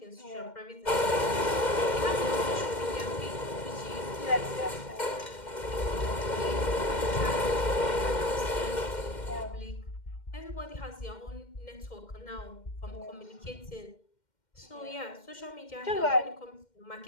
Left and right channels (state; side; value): late; right; 2.1 ms